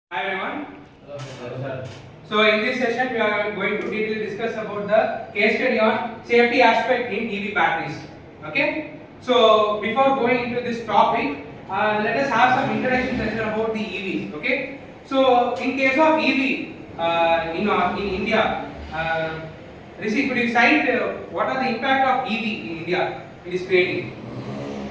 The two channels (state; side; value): identical; both; correlation 1.00